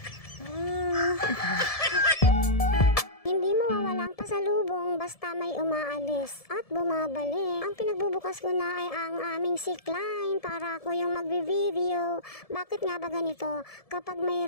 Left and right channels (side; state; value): right; late; 1.7 ms